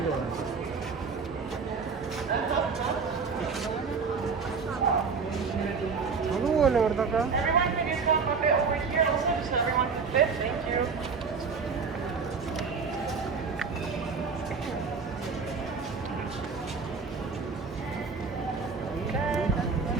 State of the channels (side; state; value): left; quieter; 5.1 dB